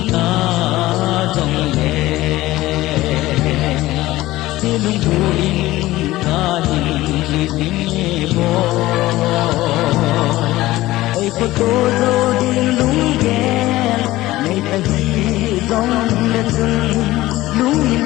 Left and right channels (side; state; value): right; quieter; 17.2 dB